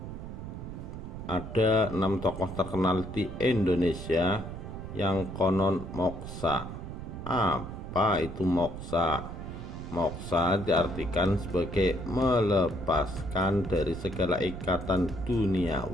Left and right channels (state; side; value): noise; right; rumble, 9 dB below the sound